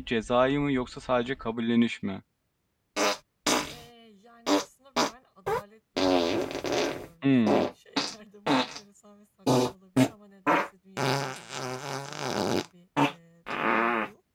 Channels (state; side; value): identical; both; correlation 1.00